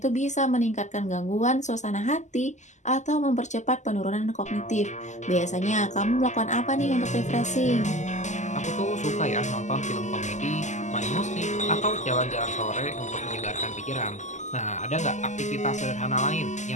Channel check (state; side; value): late; right; 0.34 ms